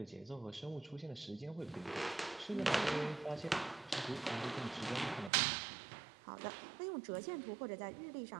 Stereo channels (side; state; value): left; drops out; at 5.3 s